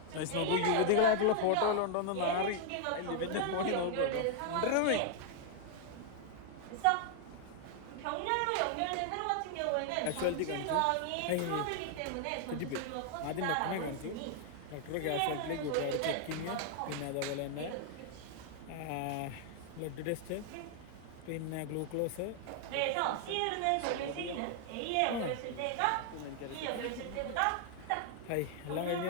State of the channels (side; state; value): both; different; correlation 0.00